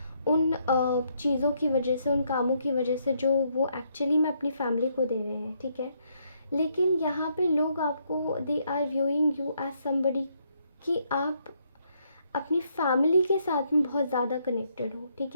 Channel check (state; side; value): inverted; both; correlation -0.73